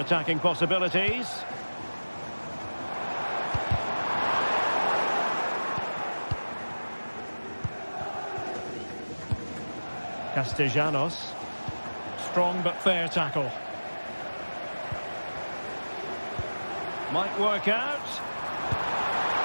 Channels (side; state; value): both; inverted; correlation -1.00